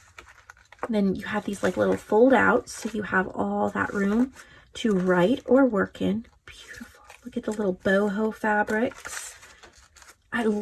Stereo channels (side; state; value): both; identical; correlation 1.00